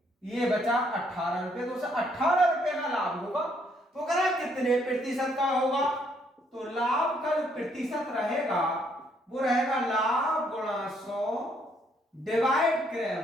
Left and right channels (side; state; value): both; normal; correlation 0.69